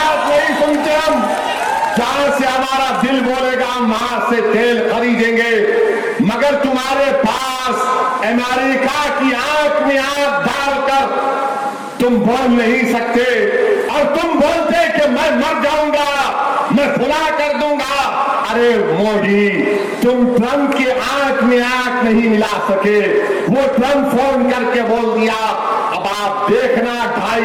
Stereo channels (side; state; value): both; identical; correlation 1.00